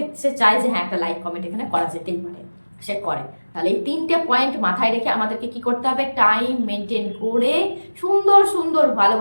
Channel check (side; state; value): both; inverted; correlation -1.00